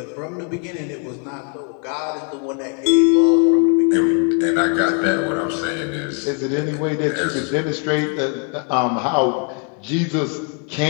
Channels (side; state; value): right; quieter; 37.4 dB